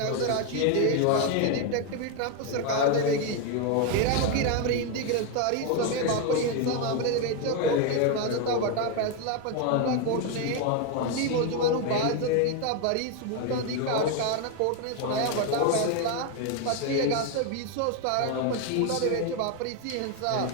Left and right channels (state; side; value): different; both; correlation 0.01